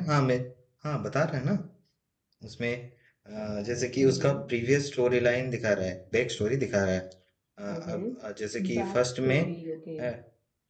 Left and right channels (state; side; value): identical; both; correlation 1.00